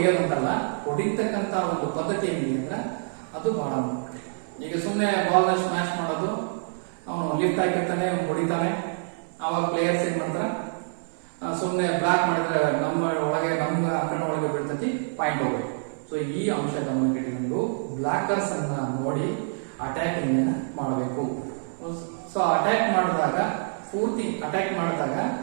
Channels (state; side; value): silent; left; 61 dB below the other